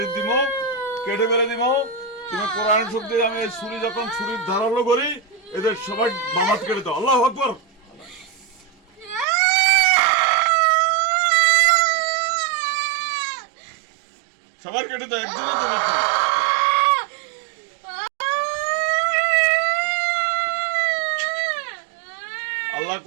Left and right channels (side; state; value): left; drops out; at 9.2 s